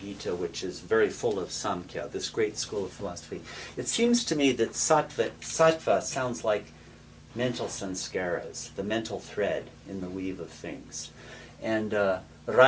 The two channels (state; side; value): identical; both; correlation 1.00